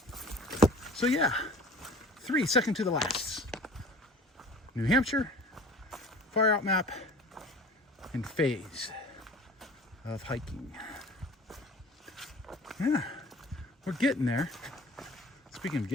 So yeah, 3 second to the last. New Hampshire, far out map, and phase of hiking. Yeah, we're getting there. Speaking of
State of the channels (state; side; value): normal; both; correlation 0.44